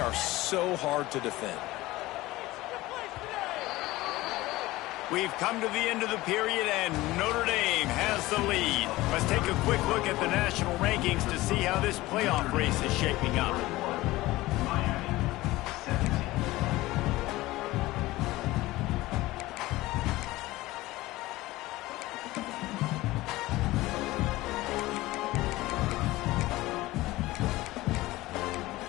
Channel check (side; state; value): right; quieter; 18.5 dB